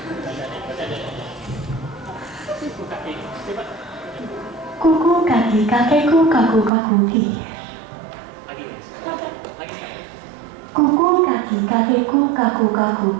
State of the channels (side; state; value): left; drops out; at 6.7 s